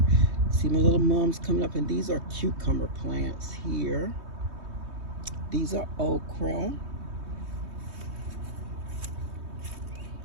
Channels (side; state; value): left; late; 3.2 ms